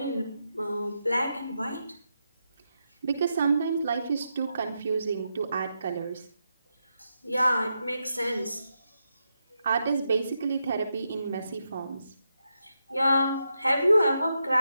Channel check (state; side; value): inverted; both; correlation -0.85